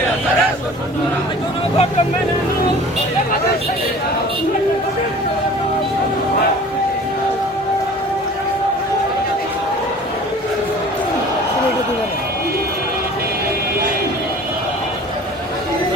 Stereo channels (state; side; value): normal; both; correlation 0.44